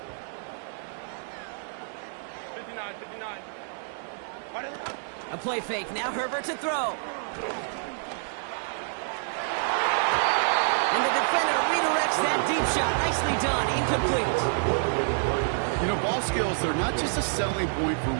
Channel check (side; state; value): left; silent; 56 dB below the other